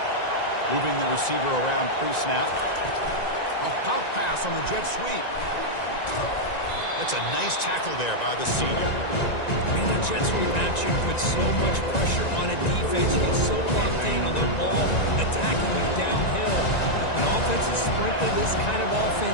Moving the receiver around pre-snap. A pop pass on the jet sweep. That's a nice tackle there by the senior. Man, that jet sweep action puts so much pressure on a defense. You get so locked in on the ball attacking you downhill. When offenses sprinkle this kind of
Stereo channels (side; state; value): right; late; 1.9 ms